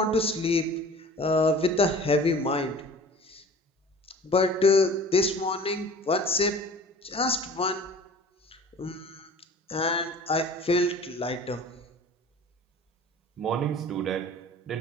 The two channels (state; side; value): normal; both; correlation 0.44